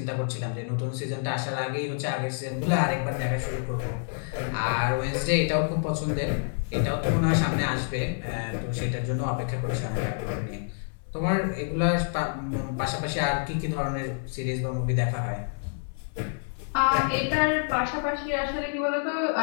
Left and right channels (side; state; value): right; silent; 60 dB below the other